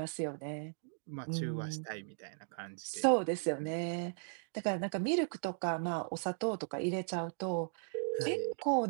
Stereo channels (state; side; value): silent; left; digital silence